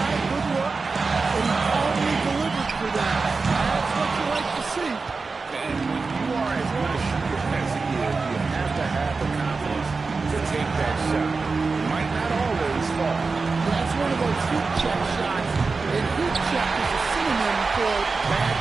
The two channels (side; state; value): left; quieter; 4.3 dB